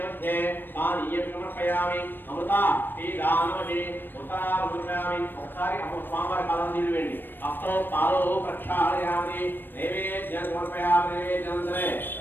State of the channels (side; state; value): right; late; 0.095 ms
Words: మధ్య పానీయం సమర్పయామి. అమృత శ్రీరామహి ఉత్తరామృతయామి. ఒకసారి స్వామివారి పాదాలు నీళ్ళు వేయండి. హస్తో పాదో ప్రక్షాళయామి. నైవేద్యం సమర్పయామి. నైవేద్యం సరే